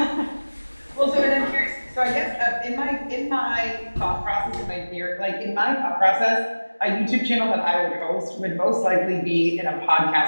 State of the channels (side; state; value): both; inverted; correlation -1.00